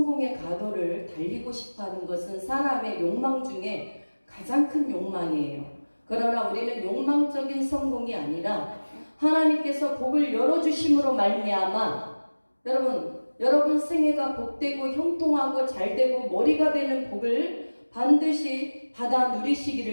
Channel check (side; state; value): both; inverted; correlation -1.00